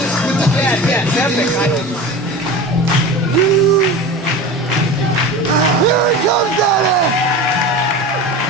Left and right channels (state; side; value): normal; both; correlation 0.32